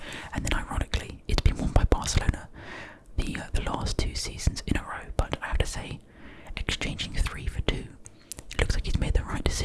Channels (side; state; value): both; identical; correlation 1.00